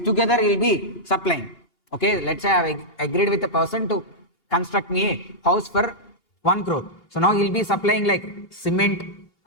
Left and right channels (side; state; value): right; late; 3.0 ms